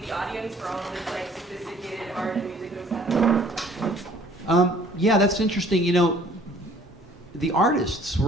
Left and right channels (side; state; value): both; normal; correlation 0.55